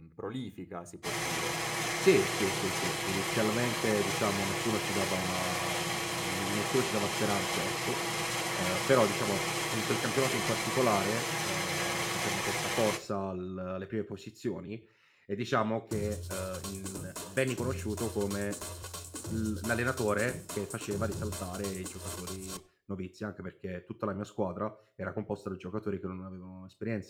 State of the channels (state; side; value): identical; both; correlation 1.00